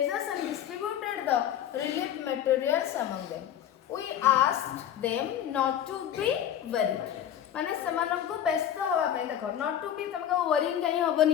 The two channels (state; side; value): quieter; right; 10.3 dB